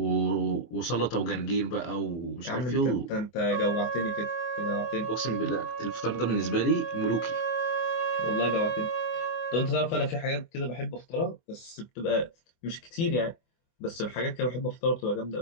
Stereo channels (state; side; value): late; right; 24 ms